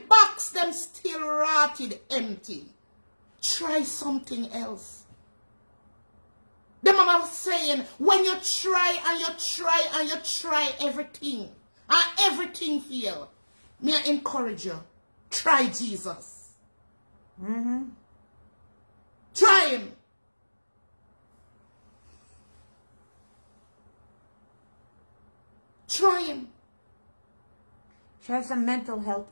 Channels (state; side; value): inverted; both; correlation -1.00